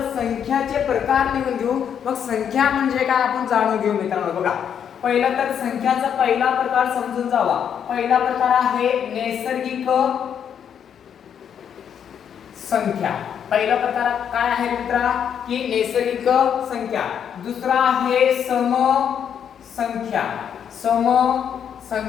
संख्याचे प्रकार लिहून घेऊ, मग संख्या म्हणजे काय आपण जाणून घेऊ मित्रांनो. बघा, पहिला तर संख्याचा पहिला प्रकार समजून जावा. पहिला प्रकार आहे नैसर्गिक संख्या. पहिला प्रकार काय आहे मित्रा, की नैसर्गिक संख्या. दुसरा आहे सम संख्या, सम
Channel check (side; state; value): right; quieter; 8.3 dB